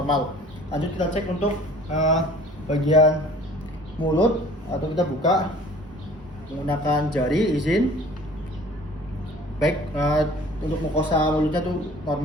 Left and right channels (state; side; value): normal; both; correlation 0.49